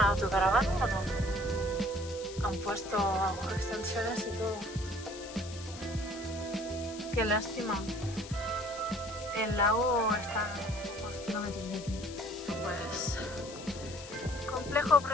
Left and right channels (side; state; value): left; noise; hiss, 14 dB below the sound